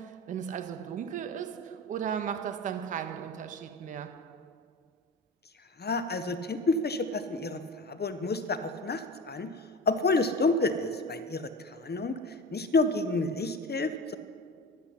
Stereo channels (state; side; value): normal; both; correlation 0.31